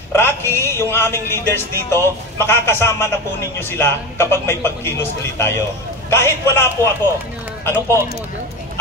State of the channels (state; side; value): normal; both; correlation 0.24